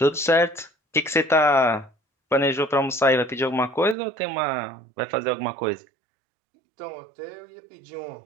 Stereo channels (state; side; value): drops out; left; at 4.0 s